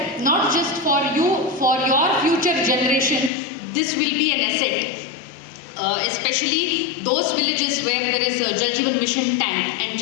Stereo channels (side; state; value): right; drops out; at 3.3 s